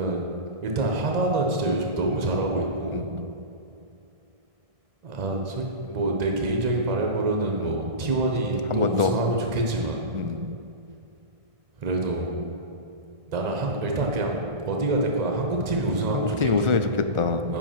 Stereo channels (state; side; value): late; left; 1.9 ms